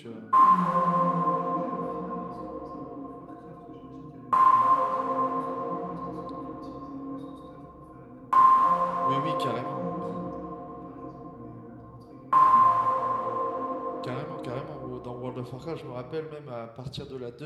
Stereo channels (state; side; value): identical; both; correlation 1.00